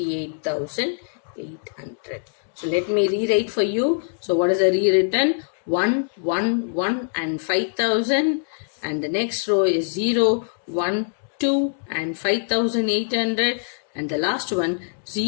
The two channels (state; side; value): silent; right; digital silence